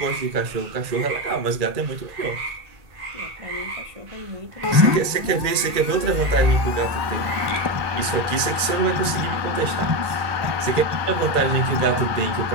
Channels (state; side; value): late; left; 2.3 ms